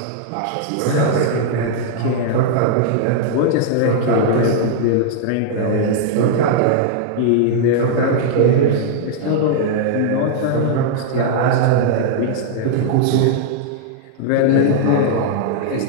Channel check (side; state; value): both; different; correlation -0.01